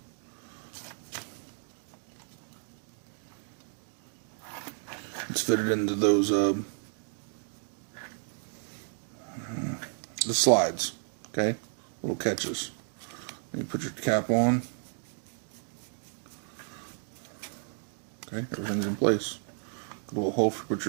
Let's fit it into those the slides, okay? Little catches. Then you put your cap on. Okay, everything's in place. Got a little hole to put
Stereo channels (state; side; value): silent; left; 56 dB below the other